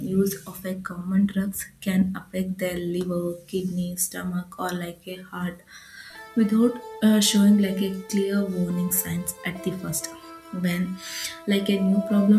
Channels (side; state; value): both; identical; correlation 1.00